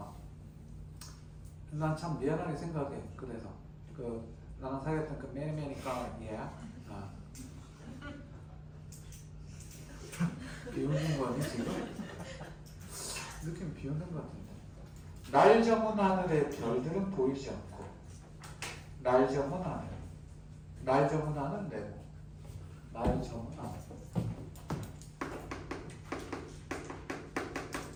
난 참 미안하게 생각해. 그래서 나랑 사귀었던 그 매니까 비웃는 거니 지금? 느낌 비웃는 것 같은데. 날 저문 하늘에 별들은 보이지 않고 날 저문 하늘. 날 저문 하늘 내고 날 저문 하늘.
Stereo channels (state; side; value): identical; both; correlation 1.00